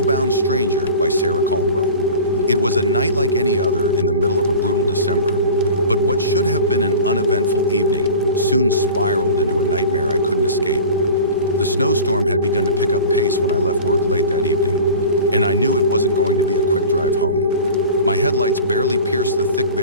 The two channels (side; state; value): both; inverted; correlation -0.37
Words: Stranger by Sarah Caldwell. It was a night like any other in the middle of a brutal December, but what should have been an uneventful evening soon spiraled into a nightmare I couldn't escape. The snowstorm had begun to pick up pace when I left work late that evening, and I knew it wasn't going to be a quick drive home. My headlights barely pierced the thick